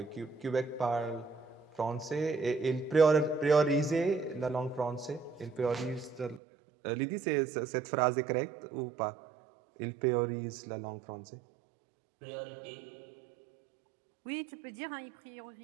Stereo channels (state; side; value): drops out; left; at 6.4 s